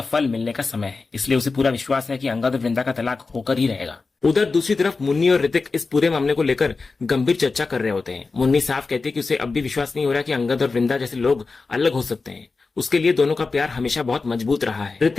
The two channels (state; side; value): quieter; right; 4.1 dB